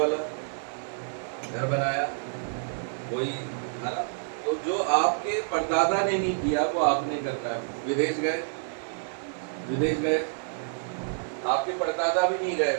घर बनाया वही, है ना? तो जो आपके परदादा ने नहीं किया वो आपने करना है। विदेश गए, विदेश गए, आपके परदादा भी नहीं गए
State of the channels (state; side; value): silent; left; digital silence